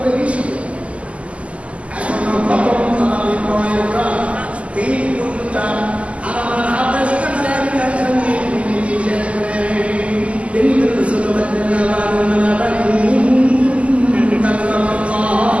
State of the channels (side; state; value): left; late; 0.062 ms